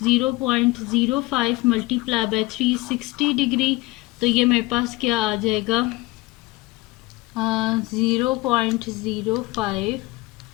मल्टीप्लाई बाय 360 डिग्री। तो ये मेरे पास क्या आ जाएगा 0.05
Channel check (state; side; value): quieter; right; 21.1 dB